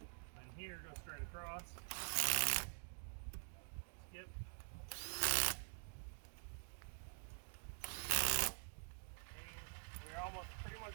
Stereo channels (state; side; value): silent; left; digital silence